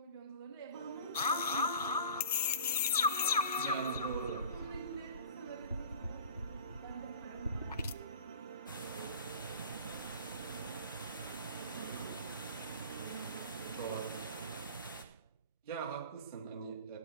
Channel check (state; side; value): inverted; both; correlation -0.42